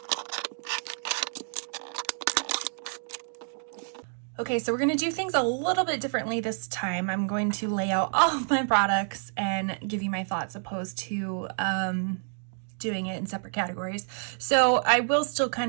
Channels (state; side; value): silent; left; 59 dB below the other